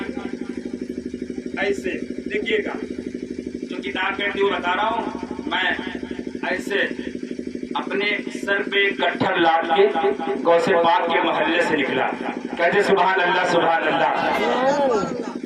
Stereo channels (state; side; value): identical; both; correlation 1.00